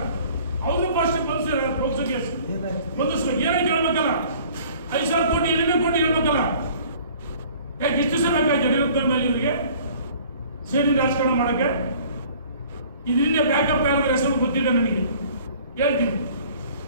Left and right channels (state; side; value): inverted; both; correlation -0.51